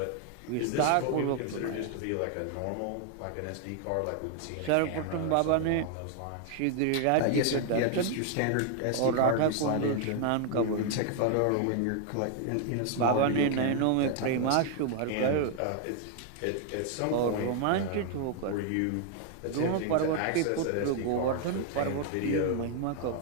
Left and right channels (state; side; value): different; both; correlation 0.00